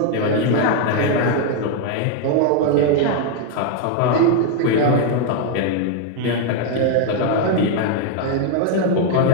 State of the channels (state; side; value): different; both; correlation 0.00